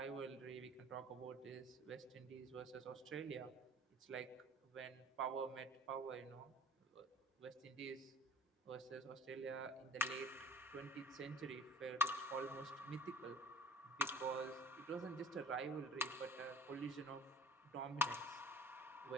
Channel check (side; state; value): both; normal; correlation 0.49